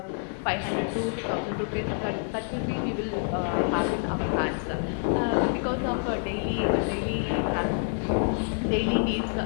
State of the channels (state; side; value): silent; right; 58 dB below the other